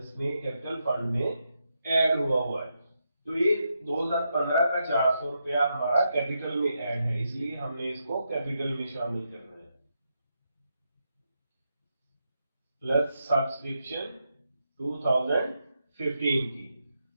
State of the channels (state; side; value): inverted; both; correlation -0.84